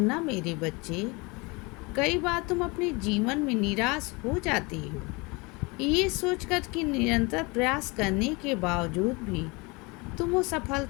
मेरे बच्चे। कई बार तुम अपने जीवन में निराश हो जाती हो, ये सोचकर कि निरंतर प्रयास करने के बावजूद भी तुम वो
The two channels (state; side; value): quieter; right; 26.9 dB